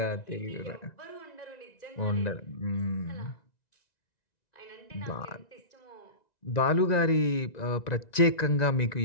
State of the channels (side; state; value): right; late; 1.9 ms